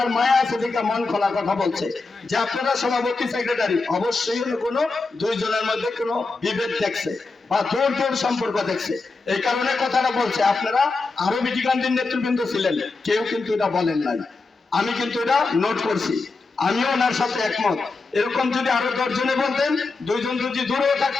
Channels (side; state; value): right; quieter; 3.8 dB